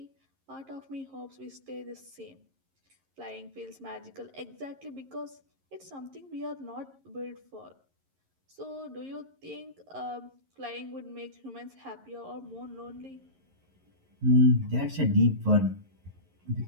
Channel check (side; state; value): left; late; 11 ms